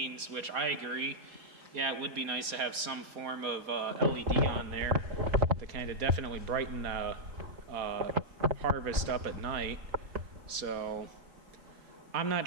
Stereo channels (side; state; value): left; late; 4.3 ms